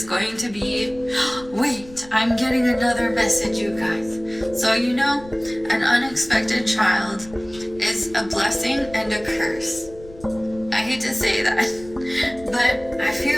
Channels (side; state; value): left; noise; rumble, 20 dB below the sound